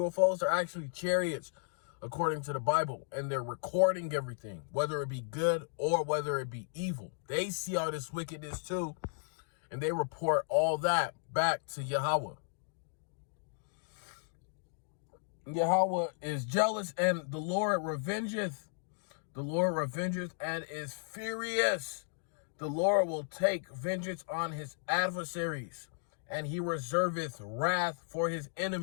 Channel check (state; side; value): silent; right; digital silence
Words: are actually chariots, according to the Bible. And they're recording everything, whether it be good or whether it be evil. They see all this wickedness too, and they report all that back to Yahweh. Yahweh is jealous, and the Lord revengeth. The Lord revengeth and is furious. The Lord will take vengeance on his adversaries, and he reserveth wrath for his